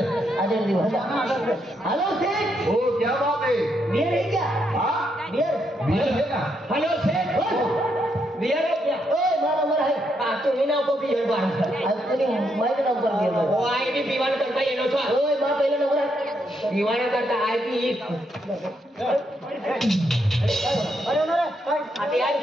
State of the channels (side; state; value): both; normal; correlation 0.78